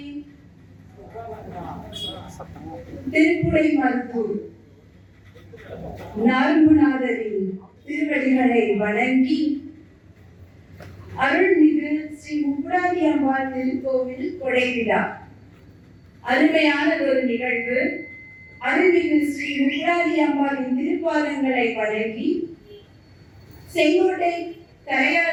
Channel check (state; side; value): identical; both; correlation 1.00